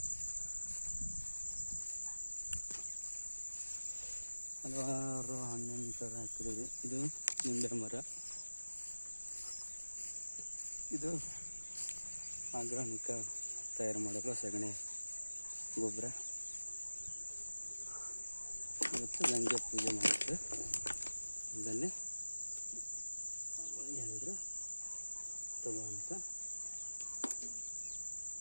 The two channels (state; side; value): inverted; both; correlation -1.00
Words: ಹಲವಾರು ಹಣ್ಣಿನ ಥರ ಹಾಕಿದ್ದೀವಿ. ಇದು ನಿಂಬೆ ಮರ, ಇದು ಆರ್ಗಾನಿಕ ತಯಾರು ಮಾಡಲು ಸಗಣಿ ಗೊಬ್ಬರ. ಇವತ್ತು ಗಂಗೆ ಪೂಜೆ ಮಾಡಿದ್ದು ಅದನ್ನೇ ಹೇಳಿದರು ತಗೋ ಅಂತ.